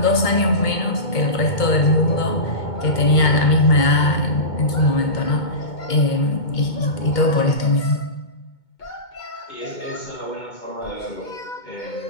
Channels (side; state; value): right; late; 2.2 ms